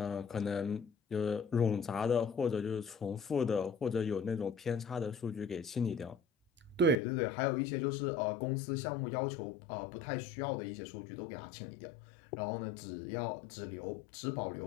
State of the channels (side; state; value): right; drops out; at 7.0 s